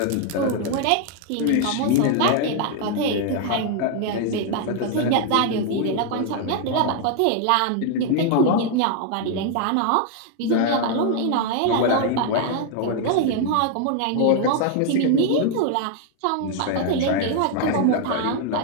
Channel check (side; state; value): both; different; correlation 0.00